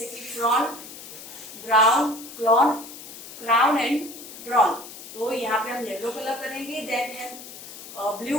कि frown, brown, clone, crown and drawn. तो यहाँ पे हम येलो कलर करेंगे. देन है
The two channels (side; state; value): left; noise; hiss, 14 dB below the sound